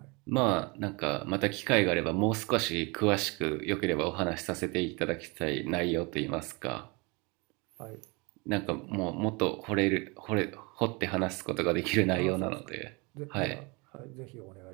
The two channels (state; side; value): quieter; left; 28.3 dB